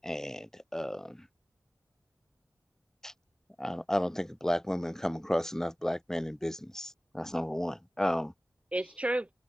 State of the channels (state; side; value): normal; both; correlation 0.98